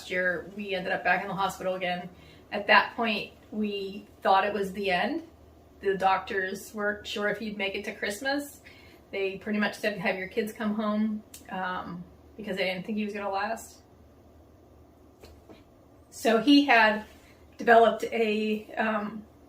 year, we ended up back in the hospital again. At that point, we thought it was the end. The doctors weren't sure if he'd make it to Christmas. They pretty much said, "Have your kids come home," because they didn't think he was going to last. So he had developed he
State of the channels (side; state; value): both; identical; correlation 1.00